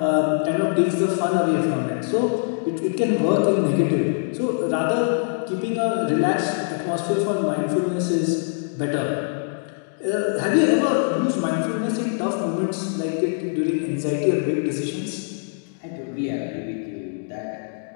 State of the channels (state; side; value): silent; right; digital silence